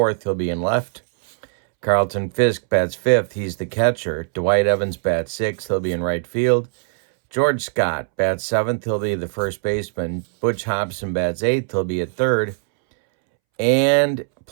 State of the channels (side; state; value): left; silent; 65 dB below the other